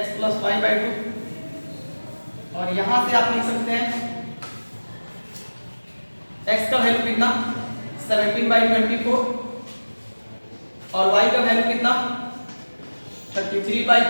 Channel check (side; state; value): both; inverted; correlation -1.00